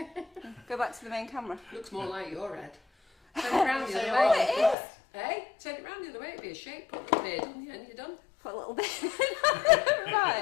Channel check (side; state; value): right; drops out; at 4.8 s